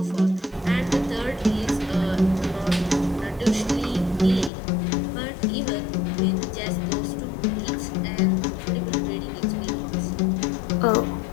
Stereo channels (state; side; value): drops out; right; at 4.5 s